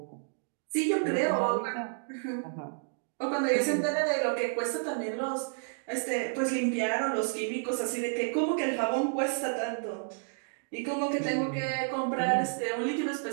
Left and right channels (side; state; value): left; silent; digital silence